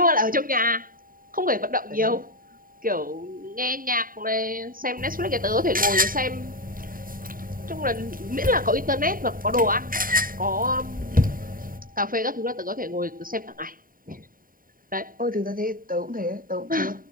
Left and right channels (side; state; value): left; late; 0.41 ms